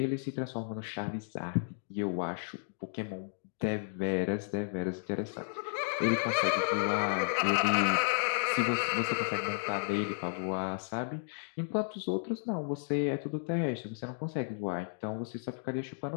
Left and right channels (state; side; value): silent; right; digital silence